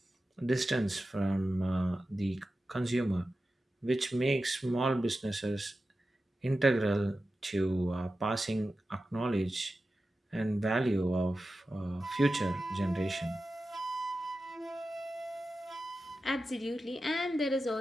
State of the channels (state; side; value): normal; both; correlation 0.93